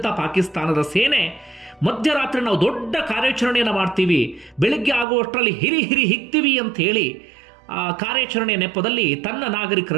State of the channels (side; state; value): left; drops out; at 5.1 s